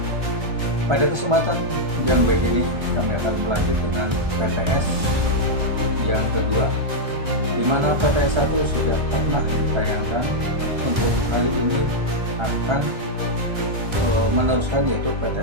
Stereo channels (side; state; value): left; late; 1.3 ms